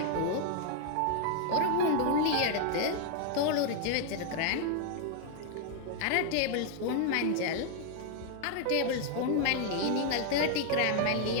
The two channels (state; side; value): different; both; correlation 0.00